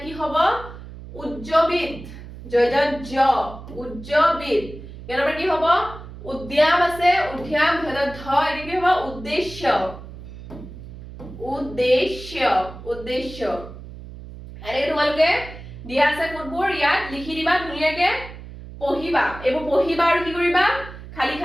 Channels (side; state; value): right; noise; hum, 14 dB below the sound